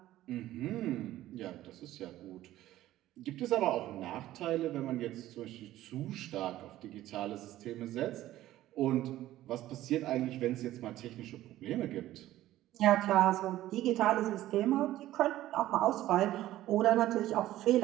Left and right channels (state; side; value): quieter; left; 14.6 dB